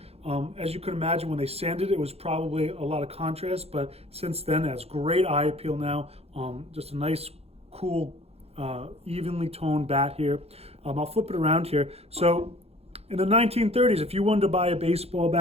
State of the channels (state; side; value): late; left; 0.29 ms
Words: As you can imagine, when they sanded it, it was probably a lot of contrast, but since then it has great eye appeal now. Just a nice, cool, evenly toned bat here. I'll flip it around here. So in the 1930s, if you wanted to buy a baseball